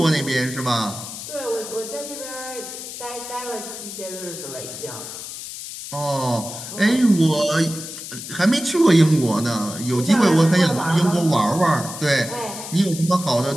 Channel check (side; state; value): left; noise; hiss, 10 dB below the sound